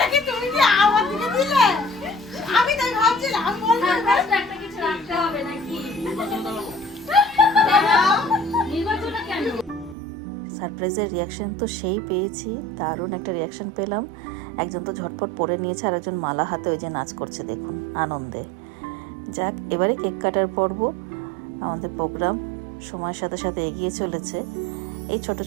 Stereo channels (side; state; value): left; drops out; at 10.0 s